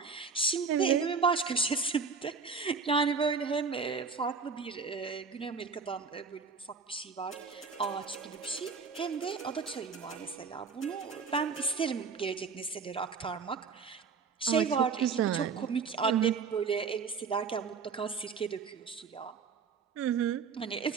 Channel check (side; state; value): left; quieter; 5.3 dB